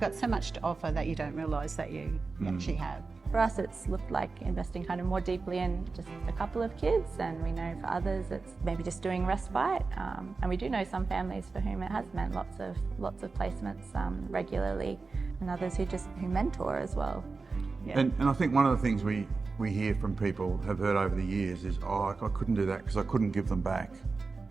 so much to offer that you don't realise that you actually have. For us, it's looked like investing kind of more deeply in just a couple of kids, and we know for others it's maybe just doing respite. And we do know some families for whom it has meant lots of placements regularly, and others who mentor as well. Yeah. And I think one of the things we hear from people, have heard over the years is, oh, I couldn't do that because I couldn't give them back.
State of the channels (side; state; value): left; quieter; 4.2 dB